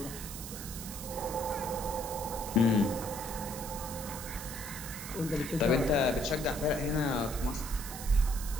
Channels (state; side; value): noise; right; hiss, 9 dB below the sound